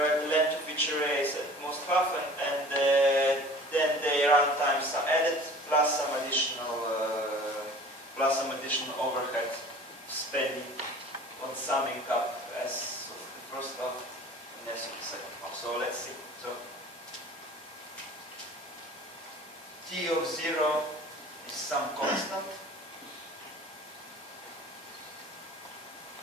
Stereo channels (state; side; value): normal; both; correlation 0.45